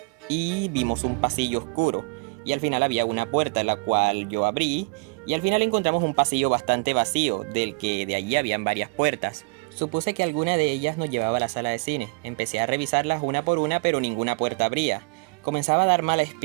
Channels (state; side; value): quieter; left; 33.1 dB